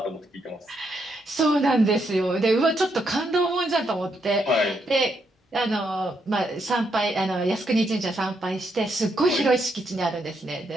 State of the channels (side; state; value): both; normal; correlation 0.78